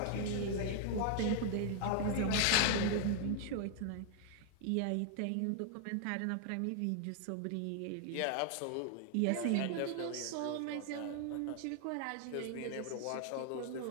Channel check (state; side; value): different; both; correlation 0.00